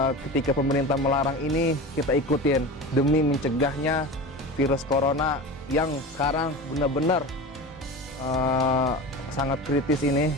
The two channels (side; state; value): both; normal; correlation 0.30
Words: ketika pemerintah melarang ini, kita ikutin demi mencegahnya virus corona yang sekarang benar-benar sangat kritis ini.